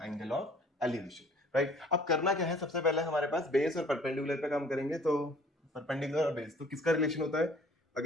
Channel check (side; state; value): both; normal; correlation 0.53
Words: एंगल ऑफ एलिवेशन, राइट। अब करना क्या है, सबसे पहले हमारे पास बेस और परपेंडिकुलर पे काम करेंगे। तो परपेंडिकुलर और बेस, तो किसका रिलेशन होता है,